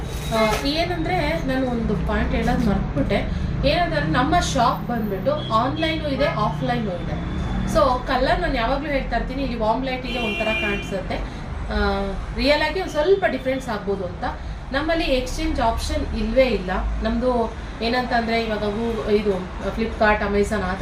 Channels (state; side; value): identical; both; correlation 1.00